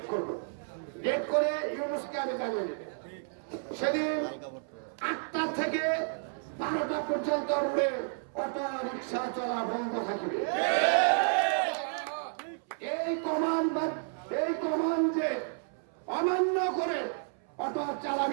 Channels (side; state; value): left; silent; 57 dB below the other